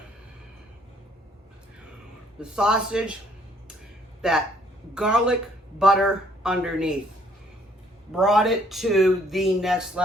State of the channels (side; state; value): both; normal; correlation 0.64